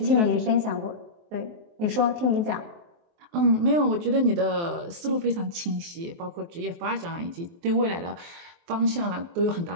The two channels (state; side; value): late; left; 23 ms